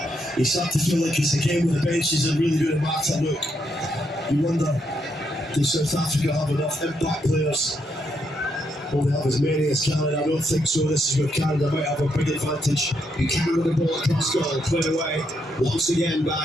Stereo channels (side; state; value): both; normal; correlation 0.78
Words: You start to feel like it's a game where the benches are really going to matter. Look, you wonder, does South Africa have enough impact players? Will they have as many as Canada? I don't think so. This is where Canada might have a big advantage. Buchanan with the ball across goal, cleared away once again